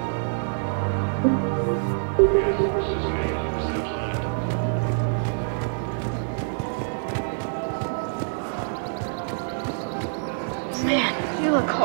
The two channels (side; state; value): left; silent; digital silence